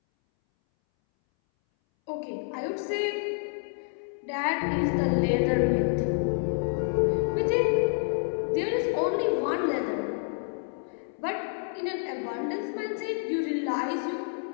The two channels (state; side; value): silent; right; 59 dB below the other